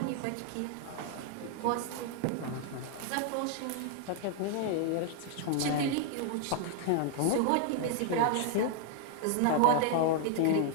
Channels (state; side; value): different; both; correlation 0.00